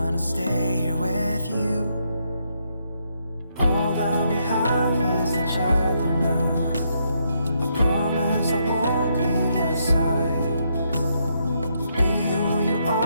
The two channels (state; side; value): inverted; both; correlation -0.77